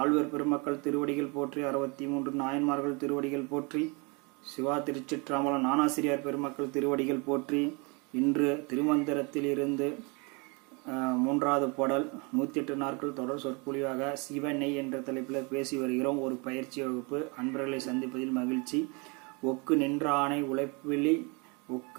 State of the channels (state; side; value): quieter; left; 30.6 dB